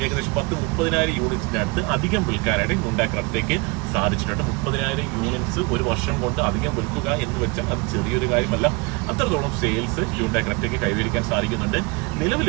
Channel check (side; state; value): left; quieter; 26.9 dB